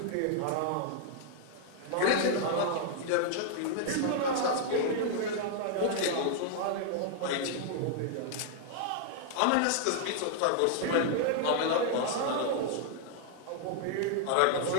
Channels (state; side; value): different; both; correlation -0.01